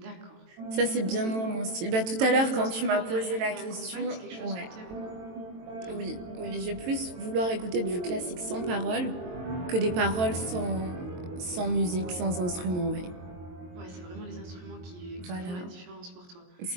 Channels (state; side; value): late; left; 22 ms